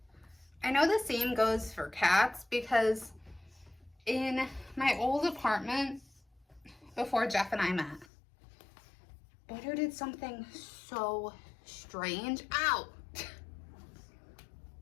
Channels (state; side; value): drops out; right; at 8.1 s